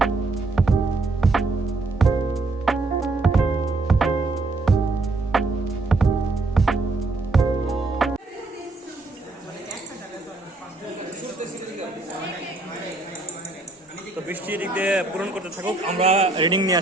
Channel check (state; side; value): quieter; left; 3.3 dB